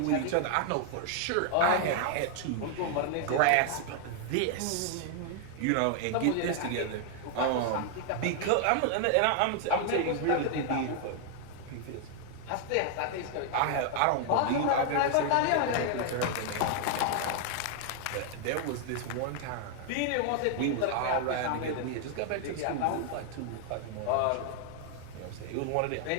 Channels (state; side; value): different; both; correlation 0.00